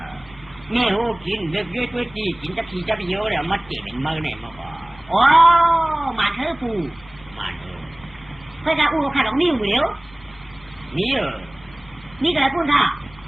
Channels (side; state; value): left; noise; hum, 25 dB below the sound